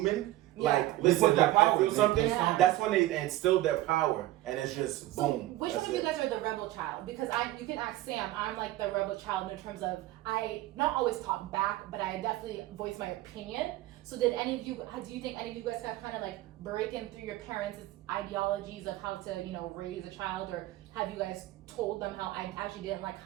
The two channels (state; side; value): quieter; left; 16.1 dB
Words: like, listen, put that like, I power. feel something. Yeah. That's when they instill their power, and it's just boom. Which That's one of you it. guys are the rebel child? Because you can ask Sam, I'm like the rebel child in terms of, I not always talk back, but I definitely voice my opinion. So do you think any of you guys have kind of like breaking through your parents' ideologies of how to, you know, raise a child, or have you guys told them how I actually didn't like